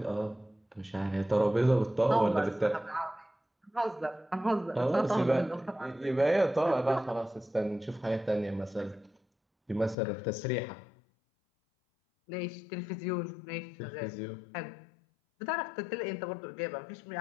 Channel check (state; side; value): drops out; right; at 10.0 s